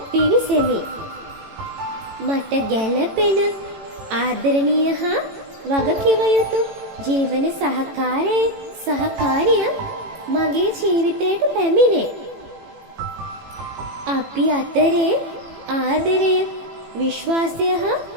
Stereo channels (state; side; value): late; left; 18 ms